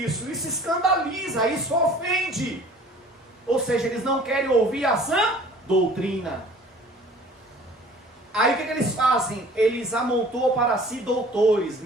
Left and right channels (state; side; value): normal; both; correlation 0.49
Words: Isso escandaliza, isso ofende. Ou seja, eles não querem ouvir a sã doutrina. Aí o que eles fazem? Eles amontoam para si doutores,